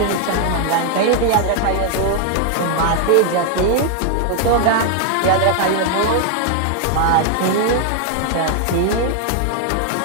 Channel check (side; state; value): both; different; correlation 0.00